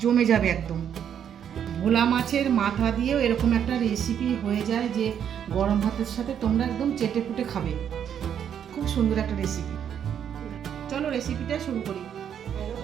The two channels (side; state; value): left; quieter; 8.9 dB